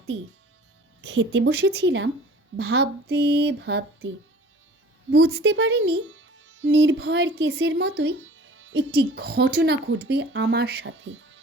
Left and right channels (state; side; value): normal; both; correlation 0.46